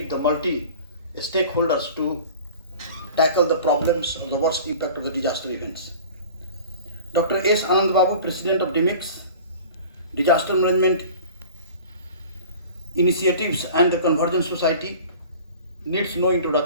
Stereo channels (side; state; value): both; inverted; correlation -0.42